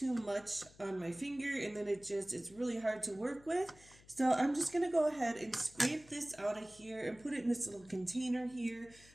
much on my finger, and then it's really hard to work with. So I'm just going to go ahead and scrape this out of here and put it in this little container here.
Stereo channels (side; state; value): left; noise; hum, 24 dB below the sound